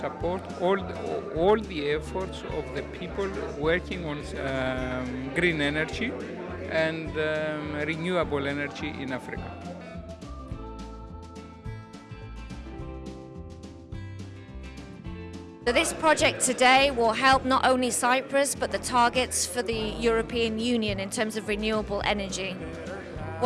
all the efforts of the people working on green energy and renewable energy in Africa. So this project today will help not only Cyprus but the targets for the European Union in terms of renewable energy.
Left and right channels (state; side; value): identical; both; correlation 1.00